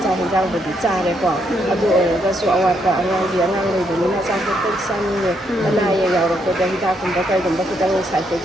ꯆꯥꯛ ꯌꯦꯟꯖꯥꯡꯕꯨꯗꯤ ꯆꯥꯔꯦꯀꯣ ꯑꯗꯨ ꯑꯣꯏꯔꯒꯁꯨ ꯑꯋꯥꯠꯄ ꯑꯉꯥꯡ ꯂꯩꯕꯅꯤꯅ ꯑꯆꯥꯄꯣꯠꯇ ꯆꯥꯅꯤꯡꯉꯦ ꯑꯅꯥ ꯑꯌꯦꯛ ꯌꯥꯎꯔꯛꯄꯗ ꯍꯤꯗꯥꯛꯀꯨꯝꯕ ꯀꯩꯒꯨꯝꯕ ꯈꯤꯇꯪ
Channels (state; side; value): normal; both; correlation 0.75